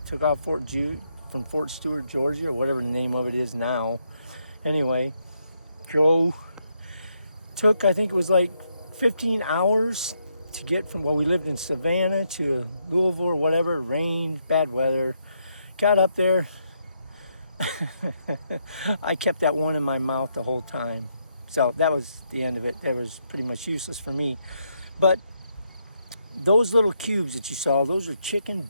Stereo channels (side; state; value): both; inverted; correlation -0.78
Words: took off from Fort Stewart, Georgia, or whatever the name of it is now. Anyway, took, I think it was like 15 hours to get from, well, we lived in Savannah to Louisville or whatever, rain, bad weather. Got up there. I kept that one in my mouth the whole time. So that was the end of it. That was pretty much useless for me. But those little cubes that you saw, those are chicken